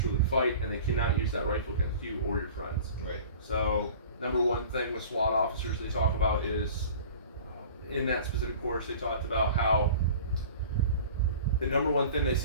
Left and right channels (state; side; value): inverted; both; correlation -0.42